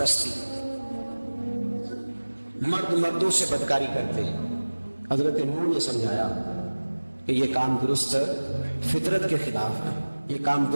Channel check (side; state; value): both; inverted; correlation -1.00